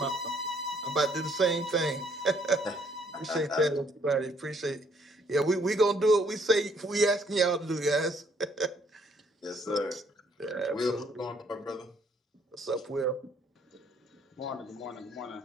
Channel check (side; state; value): both; normal; correlation 0.66